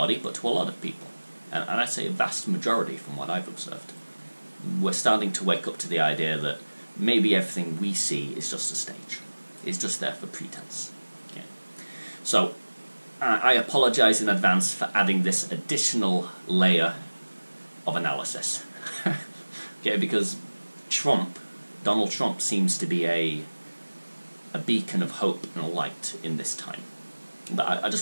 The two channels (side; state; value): both; inverted; correlation -1.00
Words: but to a lot of people, and I'd say a vast majority from what I've observed. We're starting to wake up to the idea that maybe everything we see is just a stage. It's just there for pretense. Okay. So, I apologise in advance for adding this additional layer of analysis. Okay, because Donald Trump seems to be a beacon of hope and a light in this time. But I